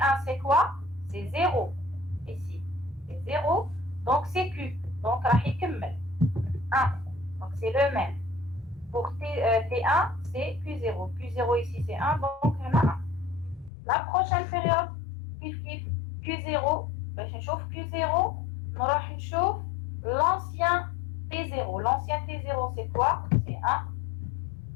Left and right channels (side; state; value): right; drops out; at 13.7 s